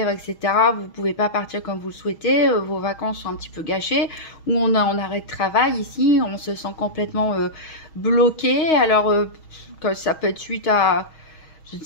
etc. Vous pouvez pas partir comme vous le souhaitez, vos vacances sont un petit peu gâchées, ou on a en arrêt de travail ici, on se sent complètement bloqué. Alors, ça peut être suite à, je ne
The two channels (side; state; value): right; late; 6.3 ms